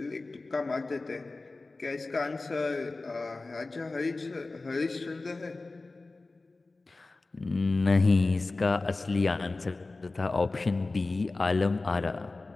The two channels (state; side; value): quieter; right; 3.4 dB